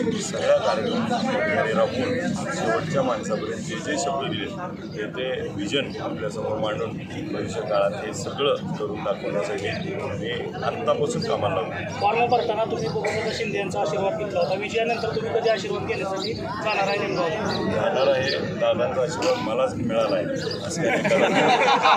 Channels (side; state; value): both; identical; correlation 1.00